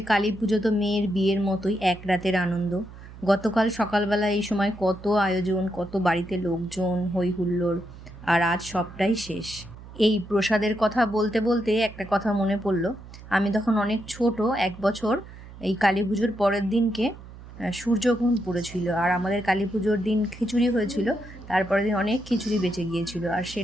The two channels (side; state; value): right; noise; hum, 16 dB below the sound